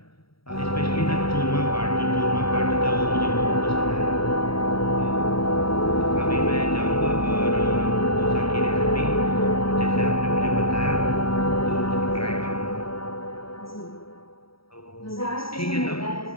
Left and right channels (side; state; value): right; late; 0.75 ms